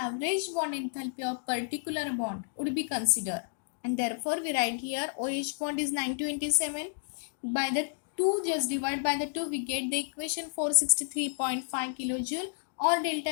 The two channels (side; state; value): right; silent; digital silence